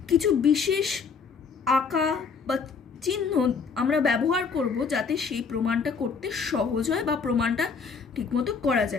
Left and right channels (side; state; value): right; quieter; 5.4 dB